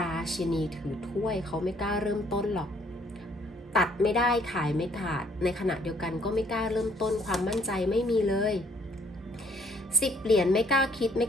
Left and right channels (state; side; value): normal; both; correlation 0.63